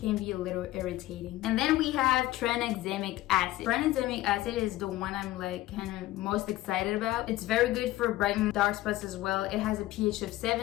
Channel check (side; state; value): right; quieter; 16.5 dB